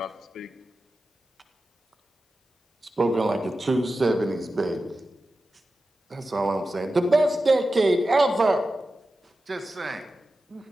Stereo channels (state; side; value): normal; both; correlation 0.93